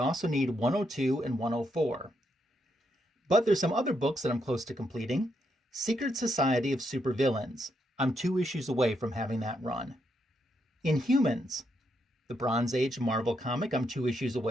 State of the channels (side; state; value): both; normal; correlation 0.79